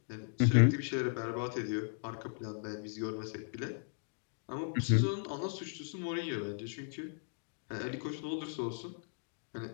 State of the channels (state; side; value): silent; right; digital silence